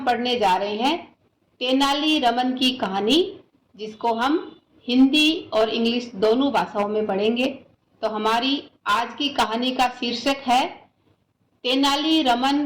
पढ़ने जा रहे हैं तेनाली रमन की कहानी, जिसको हम हिंदी और इंग्लिश दोनों भाषाओं में पढ़ेंगे। तो हमारी आज की कहानी का शीर्षक है तेनाली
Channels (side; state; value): both; identical; correlation 1.00